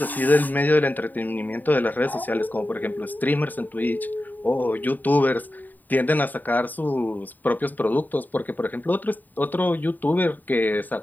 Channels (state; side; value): late; right; 0.087 ms